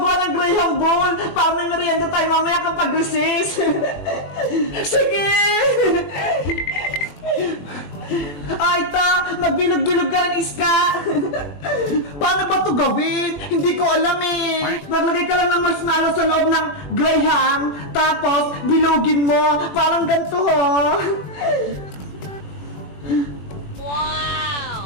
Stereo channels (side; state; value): right; late; 21 ms